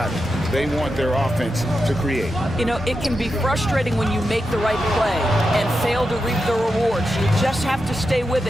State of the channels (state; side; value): normal; both; correlation 0.88